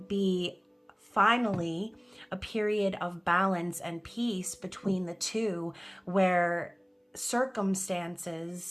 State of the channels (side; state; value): both; identical; correlation 1.00